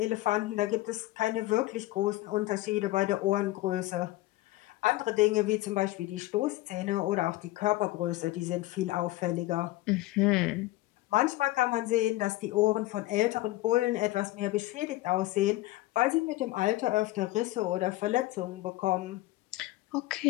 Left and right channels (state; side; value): quieter; right; 17.9 dB